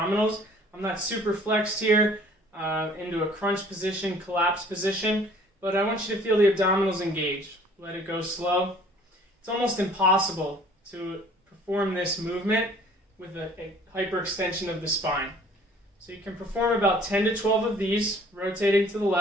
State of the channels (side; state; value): both; normal; correlation 0.53